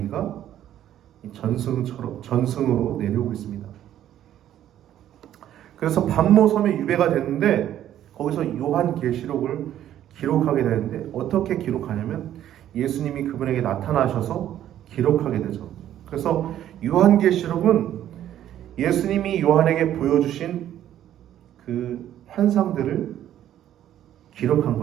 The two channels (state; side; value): quieter; left; 11.6 dB